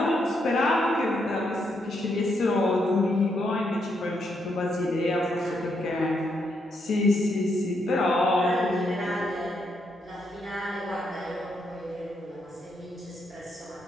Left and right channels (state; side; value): normal; both; correlation 0.78